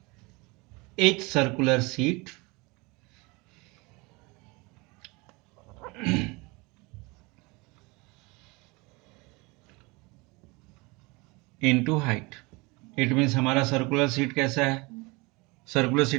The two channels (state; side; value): quieter; left; 25.9 dB